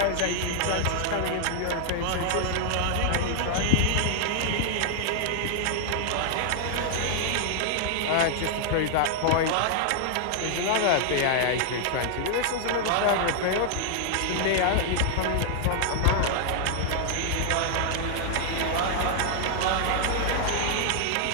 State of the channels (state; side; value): different; both; correlation 0.00